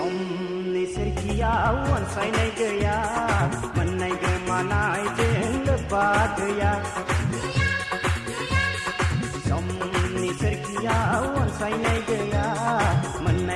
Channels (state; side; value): identical; both; correlation 1.00